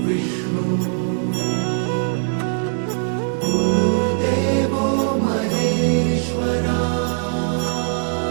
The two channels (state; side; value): silent; left; digital silence